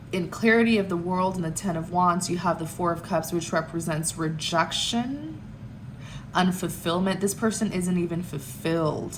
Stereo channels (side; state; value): both; identical; correlation 1.00